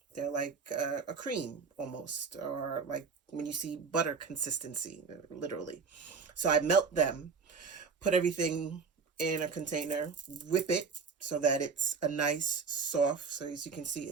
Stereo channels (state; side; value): quieter; left; 5.2 dB